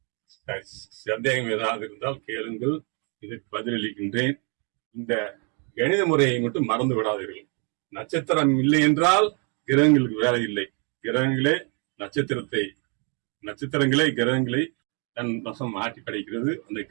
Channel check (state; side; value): quieter; left; 36.2 dB